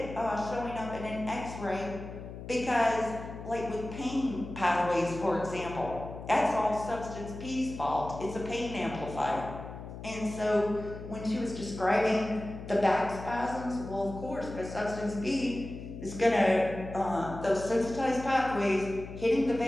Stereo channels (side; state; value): left; noise; hum, 11 dB below the sound